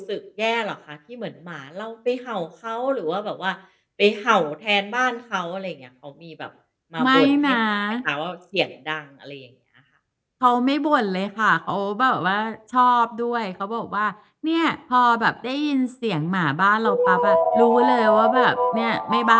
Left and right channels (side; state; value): both; identical; correlation 1.00